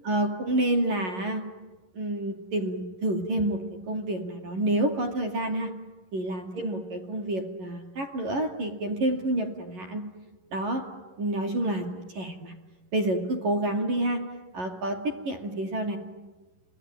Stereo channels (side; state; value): left; late; 11 ms